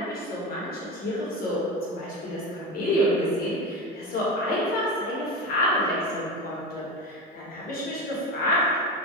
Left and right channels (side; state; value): both; normal; correlation 0.22